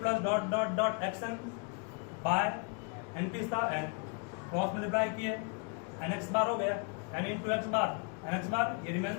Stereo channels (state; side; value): quieter; right; 35.0 dB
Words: dot dot dot xn by n पीस था n क्रॉस मल्टीप्लाई किए, nx बार हो गया, n into x bar, nx bar ये